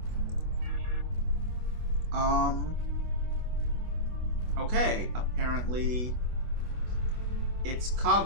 Okay, apparently it's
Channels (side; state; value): left; late; 24 ms